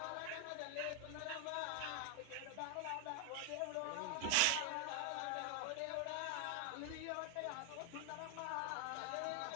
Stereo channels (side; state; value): both; different; correlation 0.00